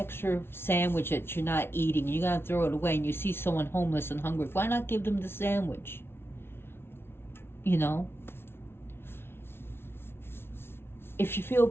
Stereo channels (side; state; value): right; late; 0.12 ms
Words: sandwich that you're not eating and you're going to throw it away, and you see someone homeless and hungry, why not give them the sandwich? If you feel